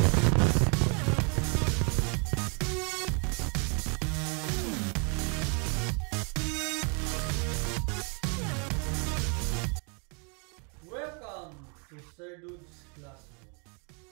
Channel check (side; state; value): left; quieter; 35.8 dB